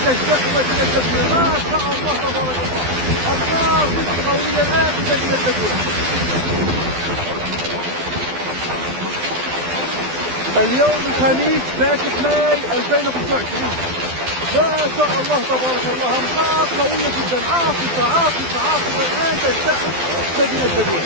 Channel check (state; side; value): late; left; 12 ms